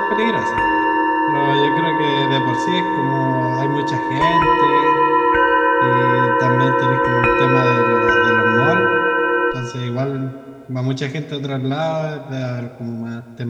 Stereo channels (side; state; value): both; identical; correlation 1.00